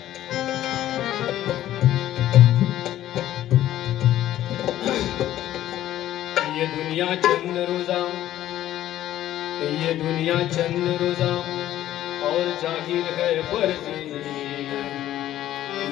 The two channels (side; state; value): right; quieter; 13.1 dB